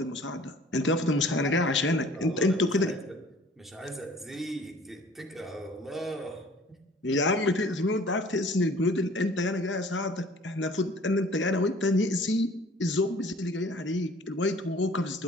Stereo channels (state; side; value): normal; both; correlation 0.50